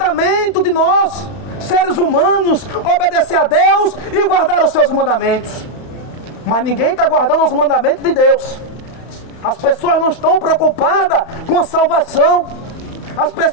de nós, seres humanos, obedecer a Deus e guardar os seus mandamentos. Mas ninguém está guardando os mandamentos de Deus. As pessoas não estão preocupadas com a salvação. As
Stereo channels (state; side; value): late; right; 31 ms